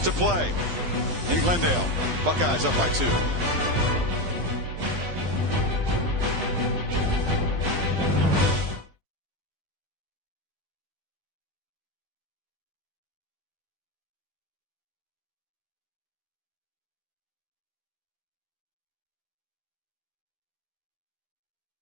play in Glendale. Buckeyes up by 2.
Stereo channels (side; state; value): left; late; 12 ms